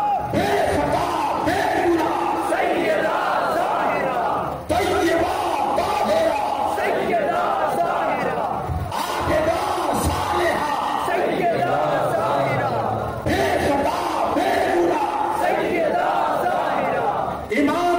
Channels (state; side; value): identical; both; correlation 1.00